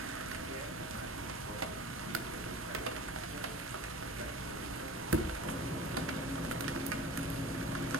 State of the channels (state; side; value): normal; both; correlation 0.37